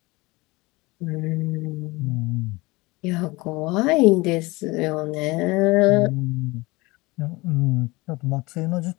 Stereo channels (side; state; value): right; quieter; 22.9 dB